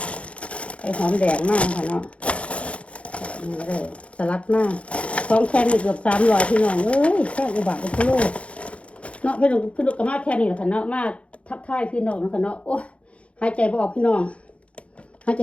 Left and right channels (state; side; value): late; right; 0.062 ms